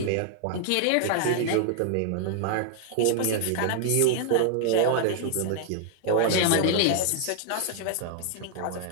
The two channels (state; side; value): different; both; correlation 0.00